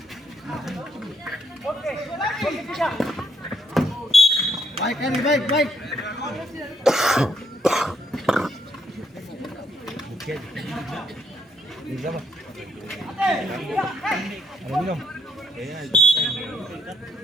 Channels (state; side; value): normal; both; correlation 0.72